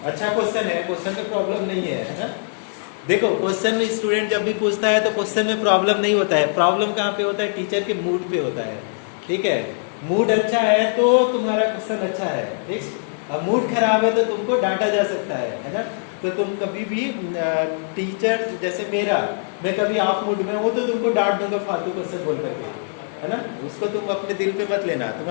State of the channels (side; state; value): right; silent; digital silence